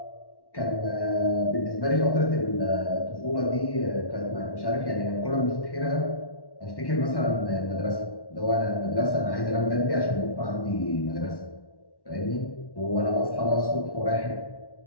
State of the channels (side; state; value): right; late; 1.1 ms